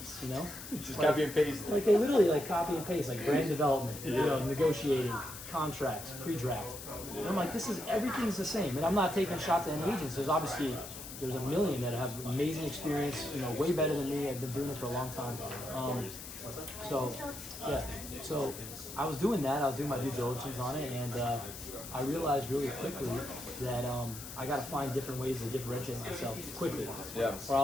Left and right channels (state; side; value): noise; left; hiss, 11 dB below the sound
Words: Just copy and paste. They literally copy and paste, brand development, negotiating, contracts, pre-draft. And I'm like, everything's the same. And I'm not taking shots at any agents. There's obviously, there's a million that have amazing experience, way better than me. I've been doing it for a long time. So I was doing that. I was doing my due diligence on it, and I realized really quickly that I got to find different ways to differentiate myself quickly. Yeah. Or I